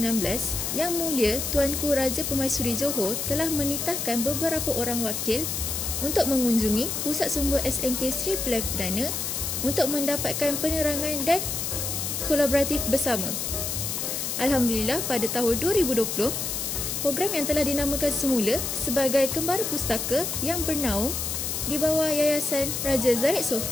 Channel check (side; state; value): left; noise; hiss, 2 dB below the sound